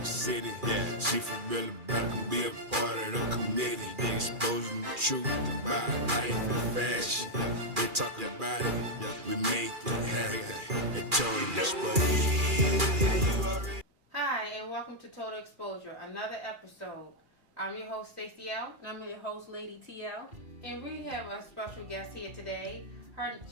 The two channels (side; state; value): left; late; 2.4 ms